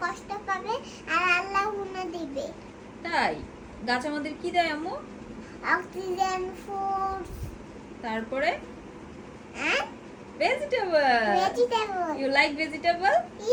কষ্ট পাবে আর আল্লাহ গুণা দিবে। তাই গাছ আমাদের কি দেয় আম্মু? অক্সিজেন, ফুড, তারপরে and vegetable. vegetable. You like vegetable?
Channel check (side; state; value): both; identical; correlation 1.00